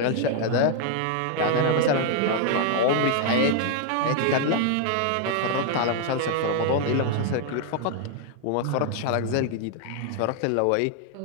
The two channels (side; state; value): both; different; correlation 0.00